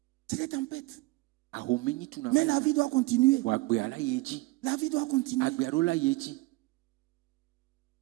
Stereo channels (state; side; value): quieter; left; 21.4 dB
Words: C'est des tempêtes. Mais la vie doit continuer. La vie doit continuer.